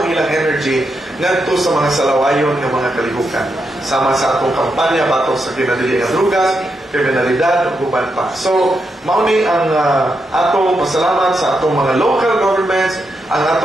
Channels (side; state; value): both; normal; correlation 0.84